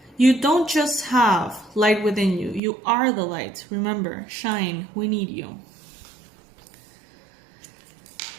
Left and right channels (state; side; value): drops out; left; at 2.6 s